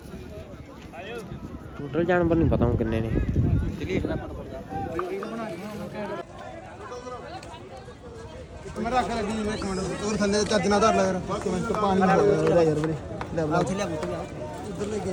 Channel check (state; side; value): identical; both; correlation 1.00